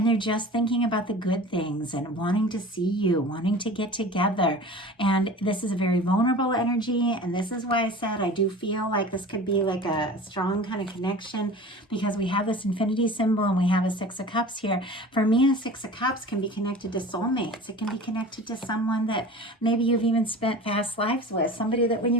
they're just thinking about the good things and wanting to see you, wanting to get together. And this is a very vulnerable energy, and this is why I said I do feel like this could be like a strong kind of connection, because we have this infinity symbol and we have a 6 of Cups here. For me, a 6 of Cups can be connected to soulmates. It can be connected to someone that maybe you've even spent past lives with. Somebody that when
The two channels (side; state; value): both; normal; correlation 0.38